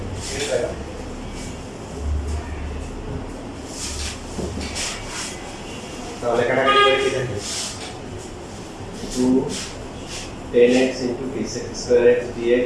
ঠিক আছে তাহলে কাটাকাটি করে কি থাকে 2 10x into t square x dx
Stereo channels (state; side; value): identical; both; correlation 1.00